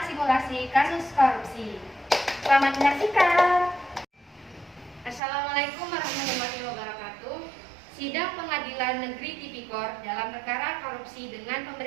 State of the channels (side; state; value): left; drops out; at 5.2 s